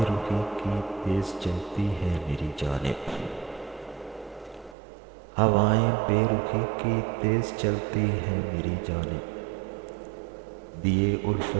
رخی کی تیز چلتی ہیں میری جانب، ہوائیں بے رخی کی تیز چلتی ہیں میری جانب، دیے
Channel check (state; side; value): drops out; left; at 4.8 s